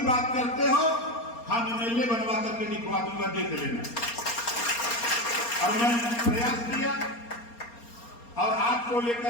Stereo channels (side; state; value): right; late; 4.3 ms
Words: बात करते हो, हम एमएलए बनवा करके दिखवा दूंगा, देख लेना। और मैंने प्रयास किया, और आपको